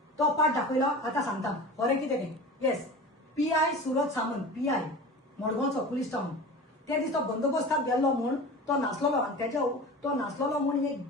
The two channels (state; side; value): normal; both; correlation 0.34